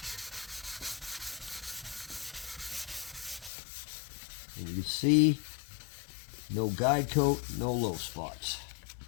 And you can see no guide coat, no low spots.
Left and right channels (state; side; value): drops out; right; at 3.5 s